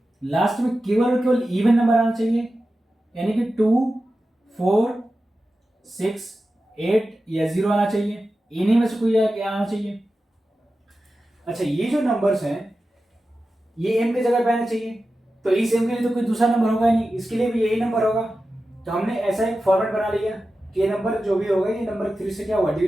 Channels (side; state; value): both; normal; correlation 0.93